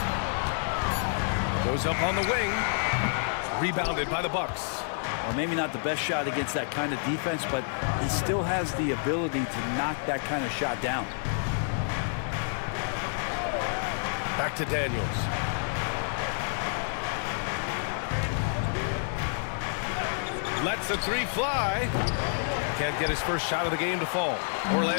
Goes up on the wing. Rebounded by the Bucks. Well, maybe not the best shot against that kind of defense, but he still has the ability to knock that kind of shot down. Back to Daniels. Lets a three fly. Can't get his first shot of the game to fall.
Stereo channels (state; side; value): silent; right; digital silence